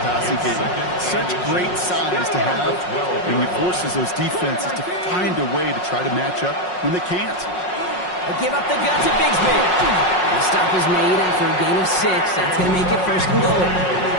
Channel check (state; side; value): late; right; 5.5 ms